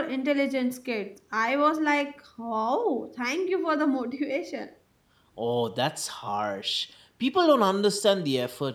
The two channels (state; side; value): identical; both; correlation 1.00